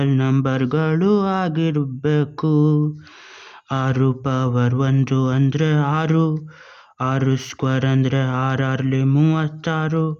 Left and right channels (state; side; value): identical; both; correlation 1.00